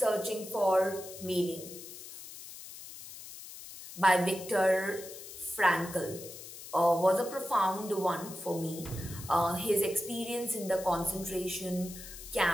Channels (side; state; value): left; noise; hiss, 13 dB below the sound